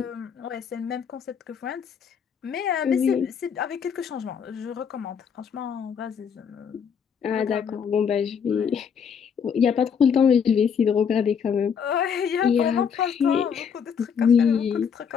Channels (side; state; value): right; quieter; 7.0 dB